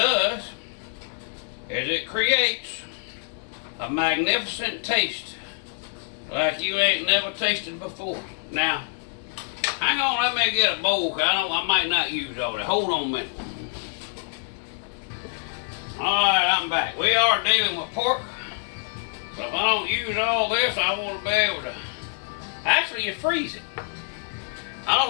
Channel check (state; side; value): silent; right; digital silence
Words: is it creates a magnificent taste like you ain't never tasted before. Now, hang on, let me get a bowl, cause I might not use all that. Hold on a minute. Alright, I'm back. We are dealing with pork. So if I don't use all this, I want to be able to... Actually, you freeze it. I don't